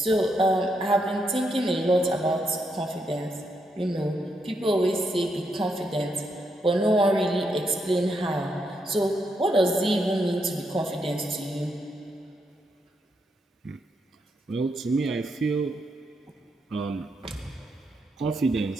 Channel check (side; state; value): both; normal; correlation 0.80